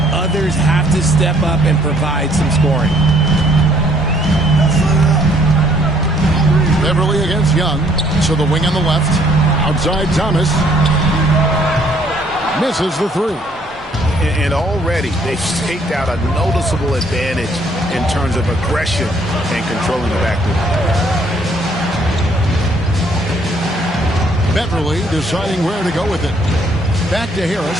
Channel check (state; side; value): normal; both; correlation 0.64